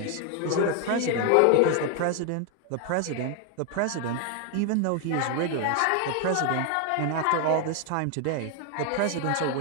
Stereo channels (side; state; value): both; different; correlation 0.01